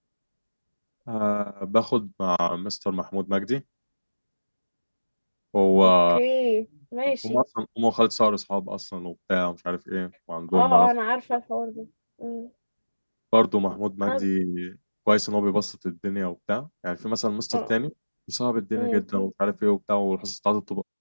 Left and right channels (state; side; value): inverted; both; correlation -1.00